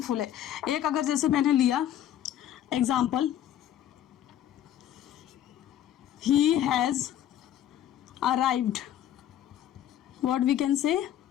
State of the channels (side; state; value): right; quieter; 11.3 dB